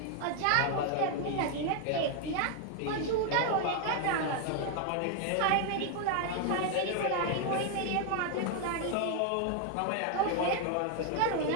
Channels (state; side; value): different; both; correlation 0.01